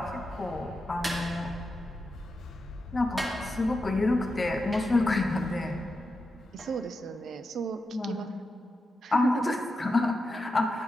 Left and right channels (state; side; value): normal; both; correlation 0.88